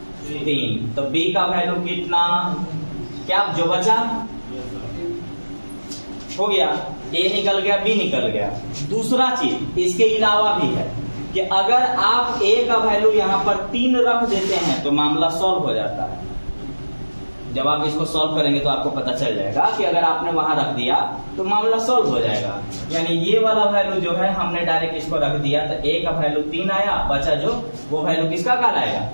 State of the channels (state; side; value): inverted; both; correlation -1.00